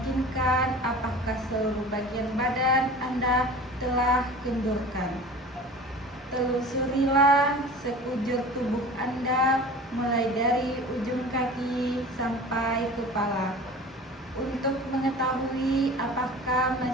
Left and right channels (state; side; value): normal; both; correlation 0.39